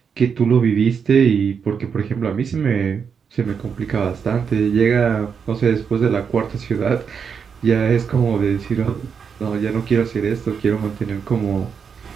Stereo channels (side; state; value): left; quieter; 6.5 dB